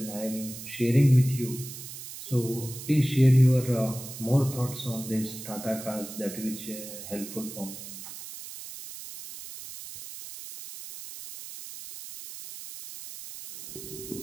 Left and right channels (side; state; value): right; noise; hiss, 12 dB below the sound